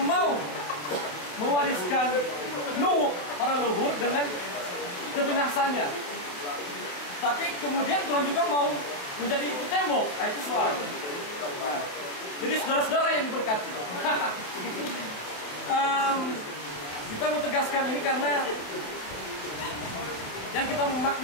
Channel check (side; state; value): right; late; 28 ms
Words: mau mewariskan Nuh para leluhur dengan kebinasaannya, tapi kemudian Tuhan juga mau menjadi itu tembok. Nah, itu soal. Nah, jadi saudara-saudara yang diberkati, kita mau tegaskan ini karena yang kita